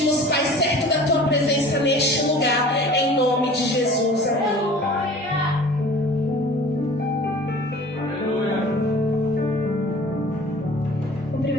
Pai, certo da tua presença neste lugar, em nome de Jesus. Amém.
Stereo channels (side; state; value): both; normal; correlation 0.44